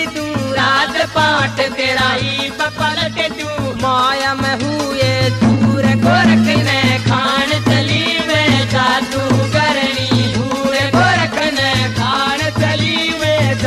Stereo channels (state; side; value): identical; both; correlation 1.00